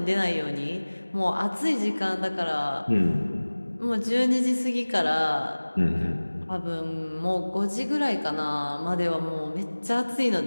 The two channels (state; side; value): inverted; both; correlation -1.00